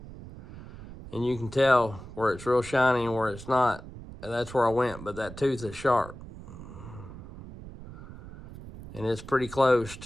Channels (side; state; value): right; noise; rumble, 15 dB below the sound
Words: and you can tell where it's real shiny and where it's not. And that's where I went, but that tooth is sharp. And it's pretty close